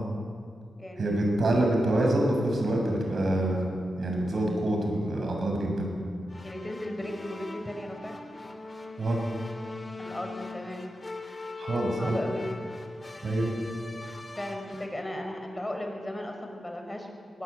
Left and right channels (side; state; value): both; normal; correlation 0.88